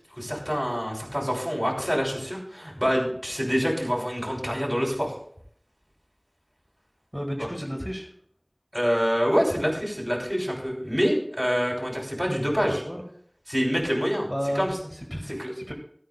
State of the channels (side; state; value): both; identical; correlation 1.00